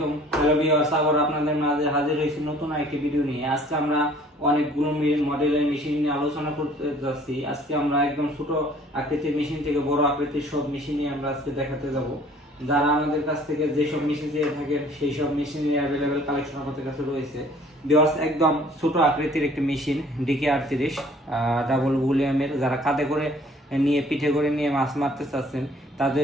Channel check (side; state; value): both; normal; correlation 0.54